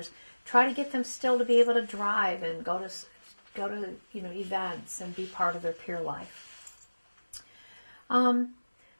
try to get them still to be able to drive and go to events and be part of their peer life.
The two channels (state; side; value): inverted; both; correlation -1.00